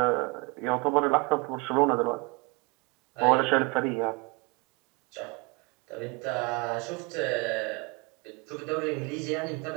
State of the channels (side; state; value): left; quieter; 28.5 dB